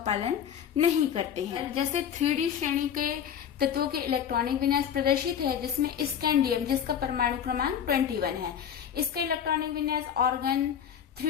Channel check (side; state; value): right; quieter; 8.7 dB